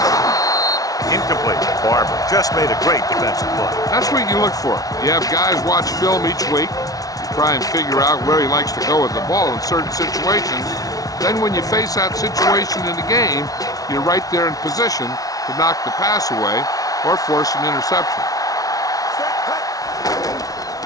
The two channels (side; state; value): right; late; 0.18 ms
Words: Incomplete. Barber just made a great defensive play. That's what you look for. You have guys watch film each week. You try and figure out where he likes to go with the ball in certain situations. Then when you face that situation in the game, you're right there in position to knock the pass away or force an interception.